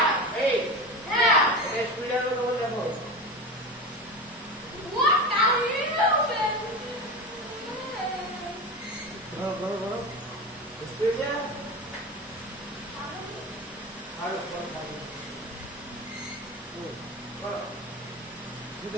8. এটা স্পিড আরো তোমার দেখো। করো স্পিড যা আরো করো। তুই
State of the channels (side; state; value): both; normal; correlation 0.25